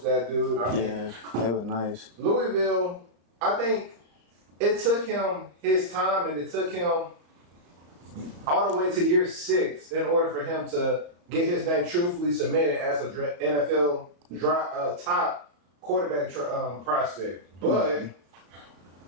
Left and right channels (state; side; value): late; left; 34 ms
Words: that dude. Yeah, they were nice. Louisville, I think it took him his time, and it took him all the way to year 6 in order for him to get his name truthfully submitted as an NFL top quarterback prospect. But